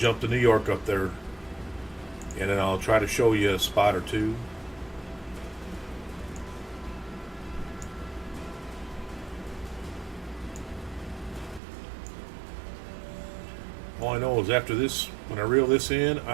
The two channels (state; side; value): drops out; left; at 11.6 s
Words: to New York up there, and then I'll try to show you a spot or two. All I know is after this, when I reel this in,